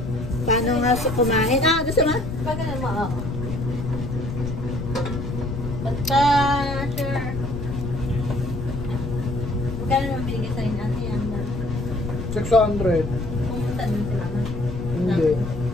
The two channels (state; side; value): noise; left; rumble, 6 dB below the sound